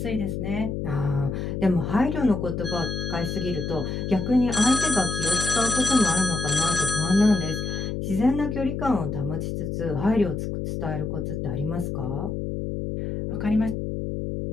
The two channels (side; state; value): left; noise; hum, 3 dB below the sound